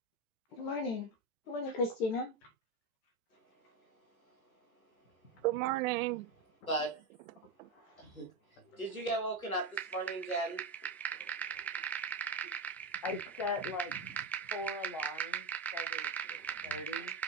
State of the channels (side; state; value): left; quieter; 3.2 dB